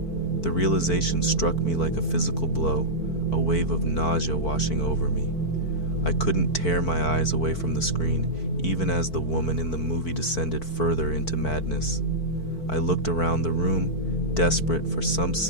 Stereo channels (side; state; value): right; late; 4.5 ms